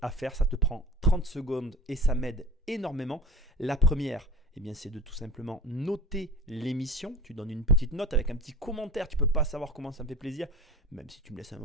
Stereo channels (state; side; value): normal; both; correlation 0.38